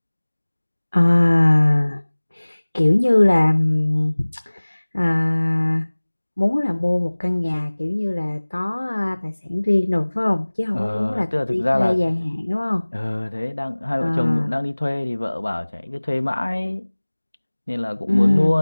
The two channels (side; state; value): both; inverted; correlation -1.00